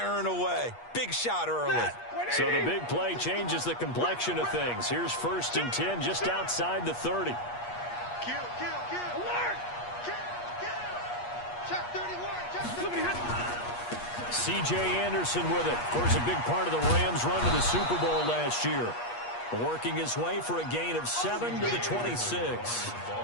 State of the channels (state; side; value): late; right; 8.4 ms